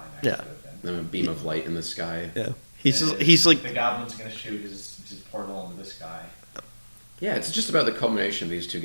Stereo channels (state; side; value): inverted; both; correlation -1.00